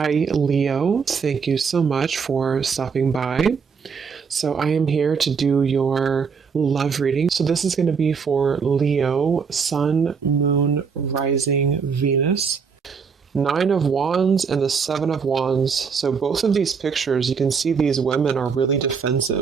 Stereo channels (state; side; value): quieter; left; 5.9 dB